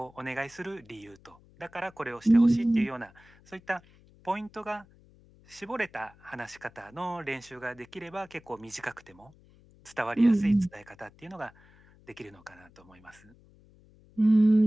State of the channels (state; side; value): noise; left; hum, 27 dB below the sound